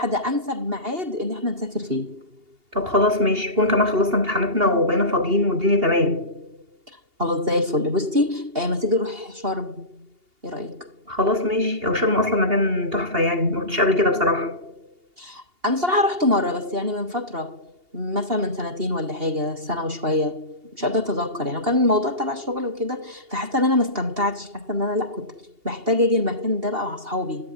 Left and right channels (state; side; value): late; left; 2.8 ms